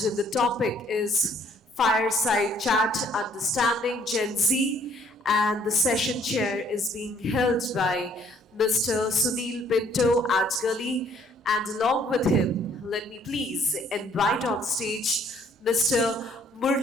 topic is Fireside Chat, Understanding Gen Z. And the session chair is being held by Mr. Sunil Pinto, Adgully. And along with him, let me please invite on stage Mr.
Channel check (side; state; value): both; normal; correlation 0.62